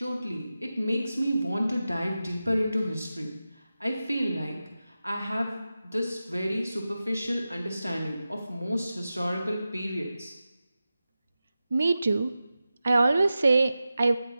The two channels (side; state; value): both; inverted; correlation -0.93